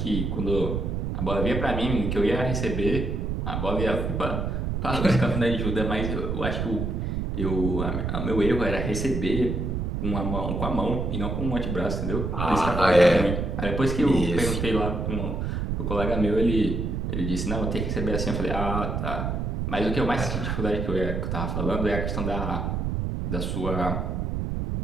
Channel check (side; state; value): right; noise; rumble, 1 dB below the sound